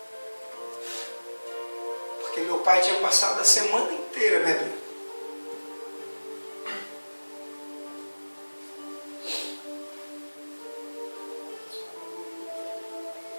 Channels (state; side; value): inverted; both; correlation -1.00